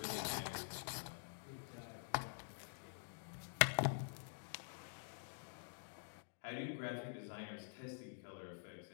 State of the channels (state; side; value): silent; right; digital silence